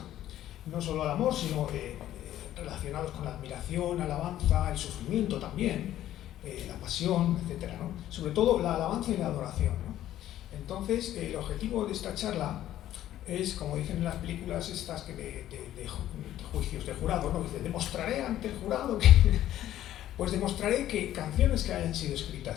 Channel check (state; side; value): quieter; right; 12.8 dB